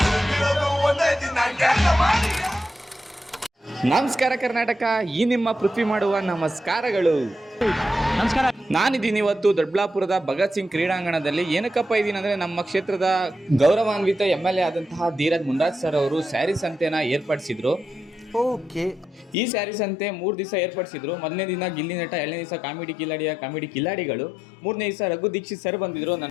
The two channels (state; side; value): drops out; right; at 19.4 s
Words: ಉಳಿದಿರೋದು ಒಂದೇ ದಿನ. ಎಲ್ಲ ಮಾಡಿಯ. ನಮಸ್ಕಾರ ಕರ್ನಾಟಕ, ಈ ನಿಮ್ಮ ಪೃಥ್ವಿ ಮಾಡುವ ನಮಸ್ಕಾರಗಳು. ನಮಸ್ಕಾರ. ನಾನಿದ್ದೀನಿ ಇವತ್ತು ದೊಡ್ಡಬಳ್ಳಾಪುರದ ಭಗತ್ ಸಿಂಗ್ ಕ್ರೀಡಾಂಗಣದಲ್ಲಿ. ಏನಕ್ಕಪ್ಪ ಇದ್ದೀನಿ ಅಂದರೆ, ನಮ್ಮ ಕ್ಷೇತ್ರದ ಗೌರವಾನ್ವಿತ MLA ಆದಂತಹ ಧೀರಜ್ ಮುಂಡಾಜ್ ಸರ್ ಅವರು ಸ್ಯಾರಿ ಸಂತೆನ ಏರ್ಪಡಿಸಿದ್ರು. ಈ ಸ್ಯಾರಿ ಸಂತೆ 3 ದಿವಸ ಏರ್ಪಡಿಸಿದ್ರು. ಮೊದಲನೇ ದಿನ ಗಿಲ್ಲಿ ನಟ, 2ನೇ ದಿವಸ ಕಾಮಿಡಿ ಕಿಲಾಡಿಗಳು, 3ನೇ ದಿವಸ ರಘು ದೀಕ್ಷಿತ್ ಸರ್ ಬಂದಿದ್ರು.